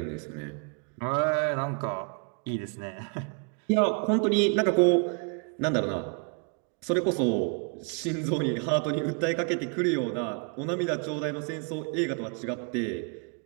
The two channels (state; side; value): quieter; left; 36.7 dB